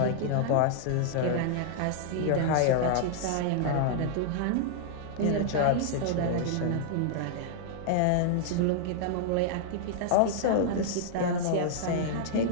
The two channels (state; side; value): different; both; correlation -0.01